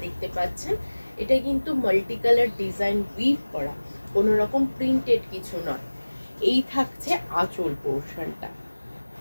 দেখতে পাচ্ছেন, এটা কিন্তু মাল্টি কালার ডিজাইন উইভ করা, কোনো রকম প্রিন্টেড কিছু নয়। এই থাকছে আঁচল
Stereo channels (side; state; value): both; inverted; correlation -1.00